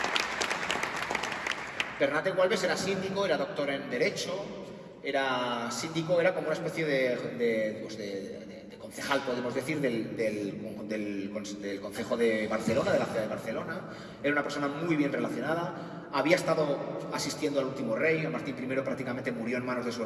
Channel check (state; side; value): identical; both; correlation 1.00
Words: Bernat de Gualbes era síndico, era doctor en Derecho, era síndico, era como una especie de concejal, podemos decir, del Concejo de Barcelona, de la ciudad de Barcelona. Era una persona muy bien relacionada, había estado asistiendo al último rey, a Martín I prácticamente murió en manos de su